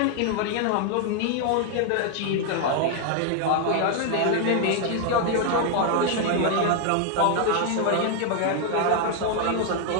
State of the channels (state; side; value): different; both; correlation 0.00